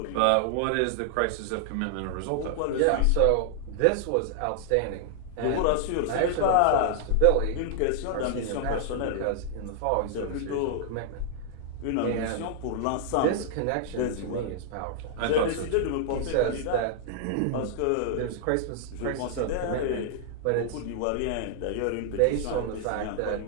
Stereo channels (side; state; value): both; different; correlation -0.01